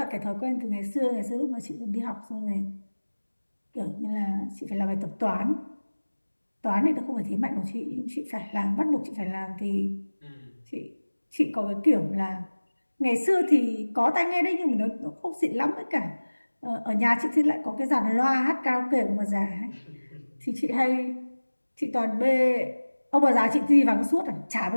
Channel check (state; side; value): inverted; both; correlation -1.00